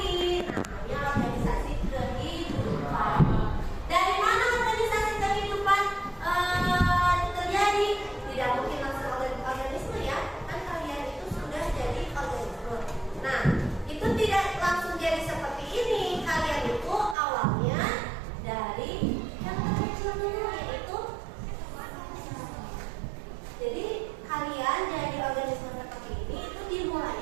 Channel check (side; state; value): left; drops out; at 17.2 s